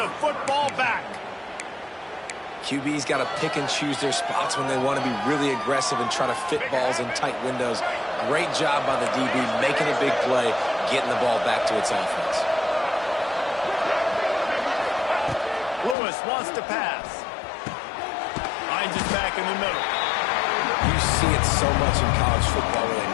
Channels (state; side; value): drops out; right; at 16.0 s